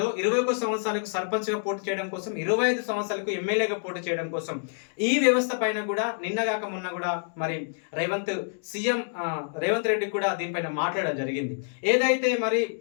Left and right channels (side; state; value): right; silent; digital silence